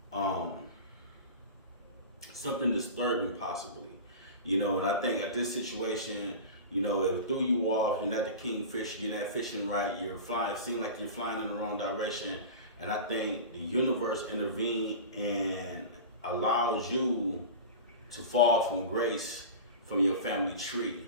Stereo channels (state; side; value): inverted; both; correlation -0.31